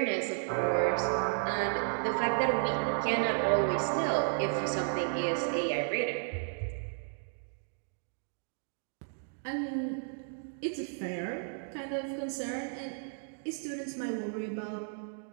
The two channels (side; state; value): left; silent; digital silence